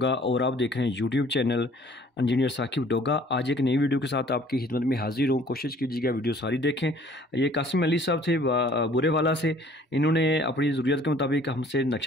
और आप देख रहे हैं YouTube channel engineer Saqib Doga. आज एक नई वीडियो के साथ आपकी खिदमत में हाजिर हूं। कोशिश कीजिएगा वीडियो सारी देखें। ये कासिम अली साहब थे बुरे वाला से। इन्होंने अपनी ज़रूरत के मुताबिक हमसे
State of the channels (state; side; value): normal; both; correlation 0.55